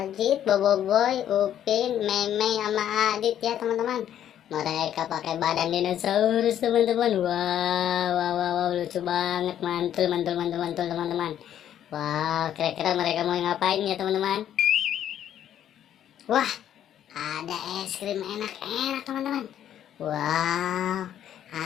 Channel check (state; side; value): quieter; right; 10.6 dB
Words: Boboiboy, Upin, Meme, sama Adit ya teman-teman. Mereka pakai badan dinosaurus teman-teman. Wow, wow, wow, wow, lucu banget, mantul, mantul, mantul, mantul teman-teman. Wow, kira-kira mereka mau ngapain ya teman-teman? Wah, ada es krim enak-enak teman-teman. Wow,